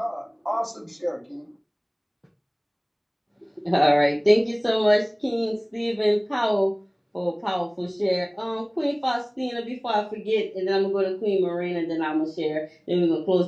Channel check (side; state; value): both; identical; correlation 1.00